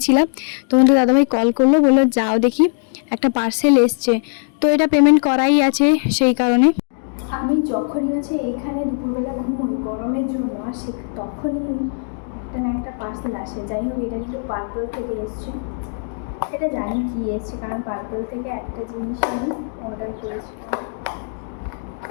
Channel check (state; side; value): silent; right; 66 dB below the other